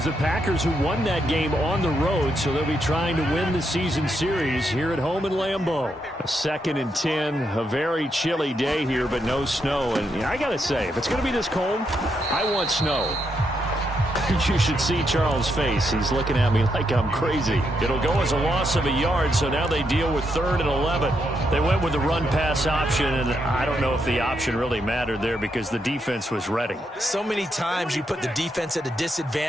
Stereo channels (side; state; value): both; normal; correlation 0.80